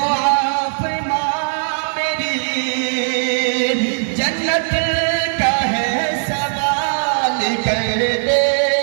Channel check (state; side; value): silent; left; 65 dB below the other